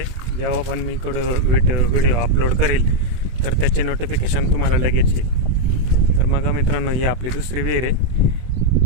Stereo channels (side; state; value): left; late; 24 ms